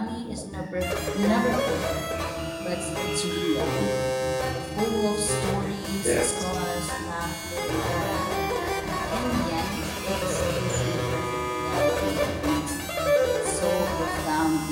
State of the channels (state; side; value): identical; both; correlation 1.00